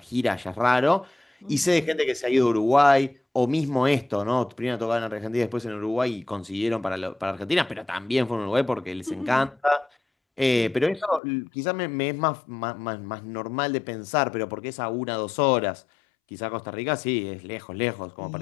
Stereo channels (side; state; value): right; drops out; at 11.2 s